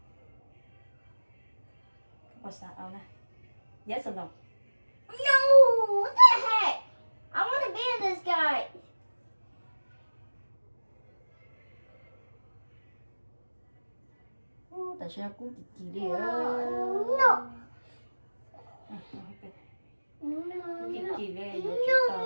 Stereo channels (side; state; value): both; inverted; correlation -1.00